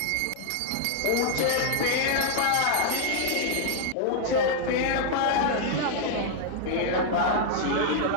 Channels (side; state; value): both; different; correlation -0.01